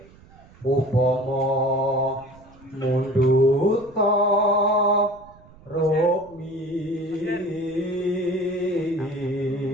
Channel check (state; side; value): noise; right; rumble, 24 dB below the sound